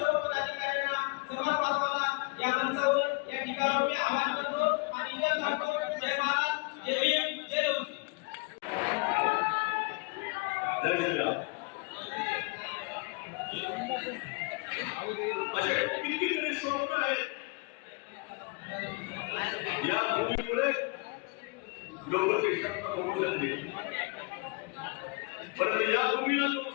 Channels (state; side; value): quieter; right; 30.2 dB